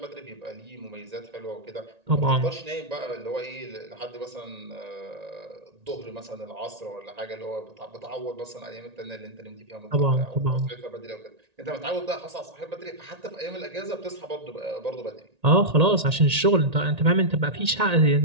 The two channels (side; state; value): left; late; 1.9 ms